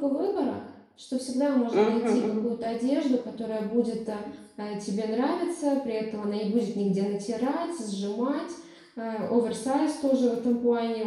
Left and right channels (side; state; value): both; identical; correlation 1.00